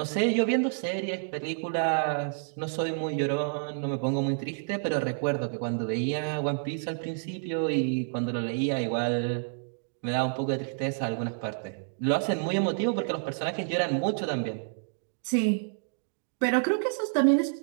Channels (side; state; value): left; silent; digital silence